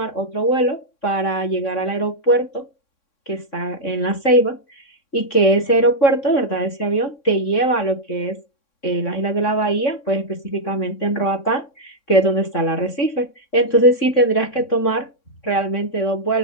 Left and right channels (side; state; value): right; late; 3.6 ms